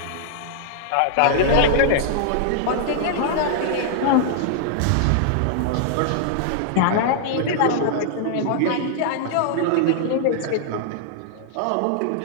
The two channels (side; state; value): both; different; correlation -0.01